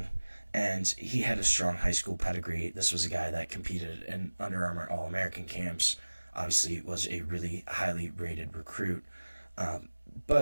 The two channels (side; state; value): both; inverted; correlation -1.00